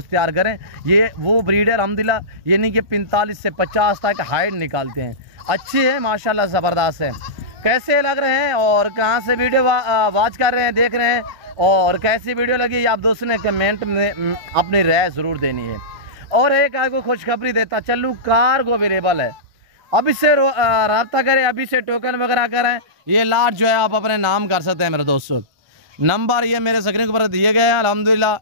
तैयार करें ये वो ब्रीड है अल्हम्दुलिल्लाह यानी कि 45 से 50 तक हाइट निकालते हैं। अच्छे हैं माशाल्लाह, ज़बरदस्त है। कैसे लग रहे हैं और कहाँ से वीडियो वॉच कर रहे हैं देख रहे हैं और कैसी वीडियो लगी आप दोस्तों ने कमेंट में अपनी राय ज़रूर देनी है। और एक आपको खुशखबरी देता चलूँ, कार्गो अवेलेबल है, अभी से रब्ता करें, अभी से टोकन वगैरह करें। ये लाट जो है आप अपने नाम कर सकते हैं मेरे दोस्तों। नंबर ये मेरे स्क्रीन के ऊपर दिए गए हैं अल्हम्दुलिल्लाह,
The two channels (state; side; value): late; left; 1.5 ms